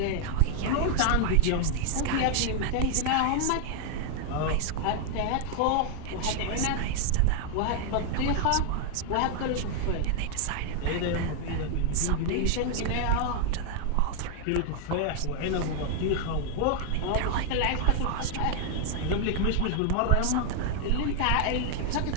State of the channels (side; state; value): both; different; correlation 0.00